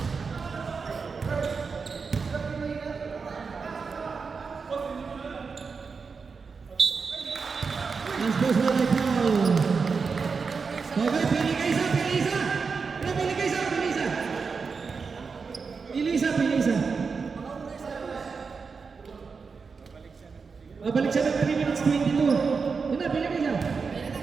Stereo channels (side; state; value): left; quieter; 5.1 dB